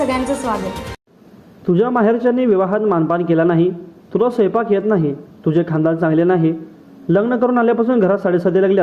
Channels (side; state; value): both; identical; correlation 1.00